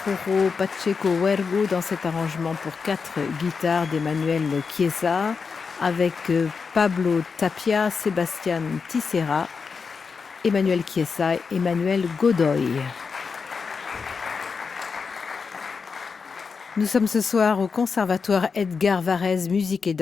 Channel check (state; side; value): quieter; right; 5.3 dB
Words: Pacheco Huergo dans cet arrangement pour 4 guitares d'Emmanuel Chiesa avec Pablo Tapia, Sébastien Tissera Emmanuel Chiesa et Emmanuel Godoy. Nous sommes ce soir au Conservatoire Edgar Varèse Musique et